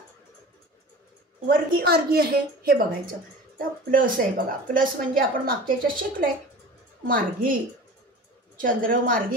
वर्गी मार्गी आहे हे बघायचं. तर प्लस आहे बघा, प्लस म्हणजे आपण मागच्या याच्यात शिकलोय. मार्गी, चंद्र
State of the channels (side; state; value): both; normal; correlation 0.38